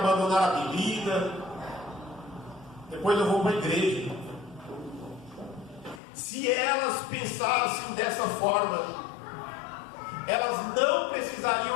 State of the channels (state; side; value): drops out; right; at 6.0 s